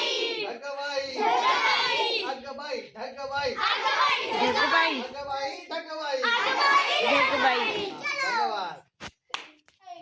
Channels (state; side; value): identical; both; correlation 1.00